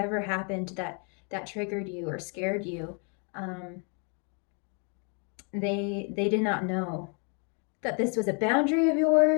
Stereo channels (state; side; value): quieter; right; 38.5 dB